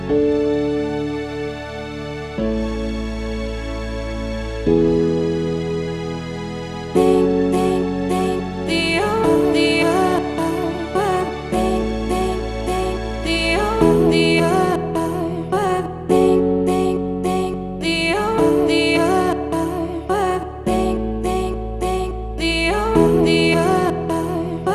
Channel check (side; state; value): both; identical; correlation 1.00